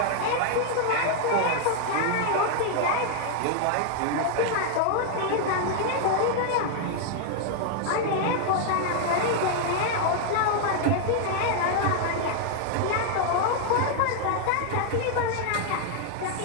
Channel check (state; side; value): different; both; correlation 0.00